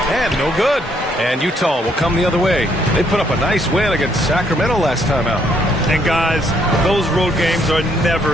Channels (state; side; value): normal; both; correlation 0.70